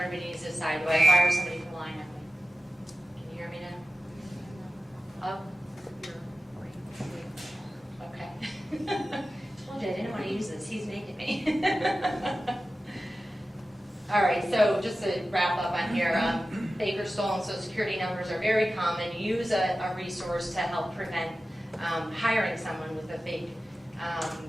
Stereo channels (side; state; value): both; normal; correlation 0.94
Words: needs to decide. Do I fire somebody for lying at me? Can you hear me now? Oh. Okay. Told you I didn't want to use this. He's making me. All right, so just to wrap up on here, fake or stolen Social Security numbers are very common. Use a resource to help prevent hiring someone with a fake